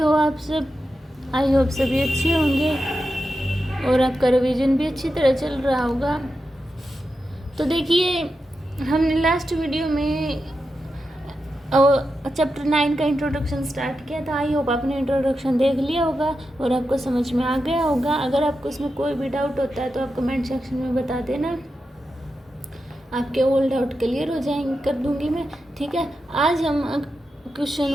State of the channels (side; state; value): both; normal; correlation 0.89